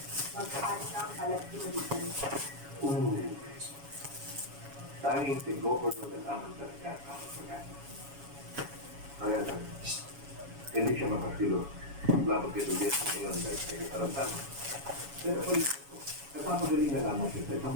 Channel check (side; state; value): left; late; 7.2 ms